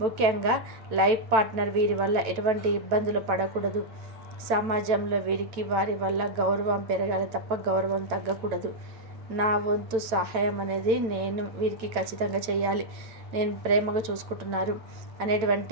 ముఖ్యంగా లైఫ్ పార్ట్నర్ వీరి వల్ల ఎటువంటి ఇబ్బందులు పడకూడదు. సమాజంలో వీరికి వారి వల్ల గౌరవం పెరగాలి తప్ప గౌరవం తగ్గకూడదు. నా వంతు సహాయం అనేది నేను వీరికి ఖచ్చితంగా చేయాలి, నేను ప్రేమగా చూసుకుంటున్నారు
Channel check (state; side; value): late; left; 9.0 ms